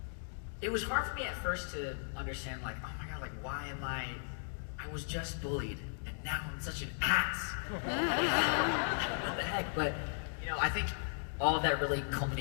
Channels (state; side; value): silent; right; digital silence